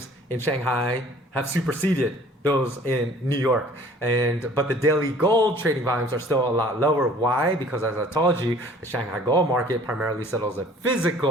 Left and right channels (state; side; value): normal; both; correlation 0.52